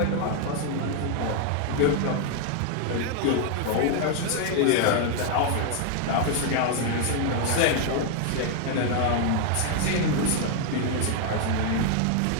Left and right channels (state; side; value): different; both; correlation 0.00